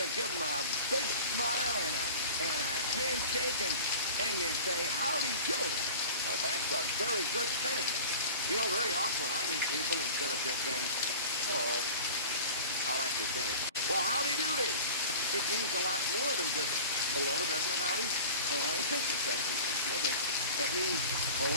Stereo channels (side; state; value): both; inverted; correlation -0.39